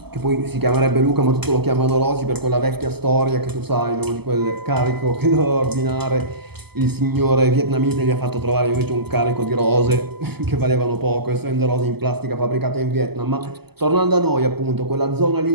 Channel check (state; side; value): late; left; 0.97 ms